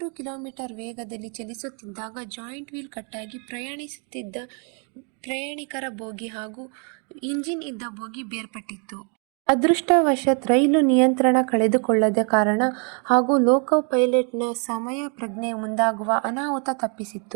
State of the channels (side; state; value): left; quieter; 38.2 dB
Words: ಕಿಲೋಮೀಟರ್ ವೇಗದಲ್ಲಿ ಚಲಿಸುತ್ತಿದ್ದಾಗ ಜಾಯಿಂಟ್ ವೀಲ್ ಕಟ್ಟಾಗಿ ಪ್ರಯಾಣಿಸುತ್ತಿದ್ದ ಪ್ರಯಾಣಿಕರ ಬೋಗಿ ಹಾಗೂ ಇಂಜಿನ್ ಇದ್ದ ಬೋಗಿ ಬೇರ್ಪಟ್ಟಿತ್ತು. ಅದೃಷ್ಟವಶಾತ್ ರೈಲು ನಿಯಂತ್ರಣ ಕಳೆದುಕೊಳ್ಳದ ಕಾರಣ ಹಾಗೂ ಲೋಕೋ ಪೈಲಟ್ನ ಸಮಯ ಪ್ರಜ್ಞೆ ಮುಂದಾಗುವ ಅನಾಹುತ